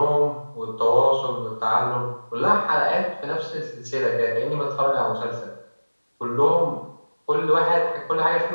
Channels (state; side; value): inverted; both; correlation -1.00